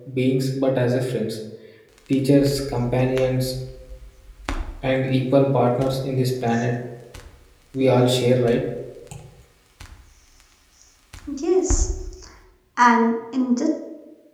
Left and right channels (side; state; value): both; identical; correlation 1.00